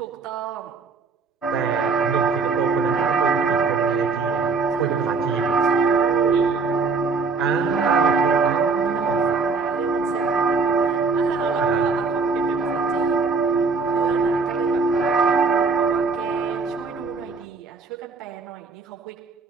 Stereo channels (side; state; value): left; quieter; 4.6 dB